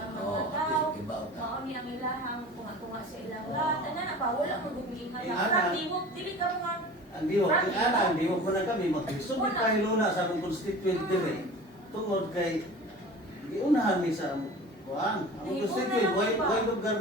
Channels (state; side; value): normal; both; correlation 0.38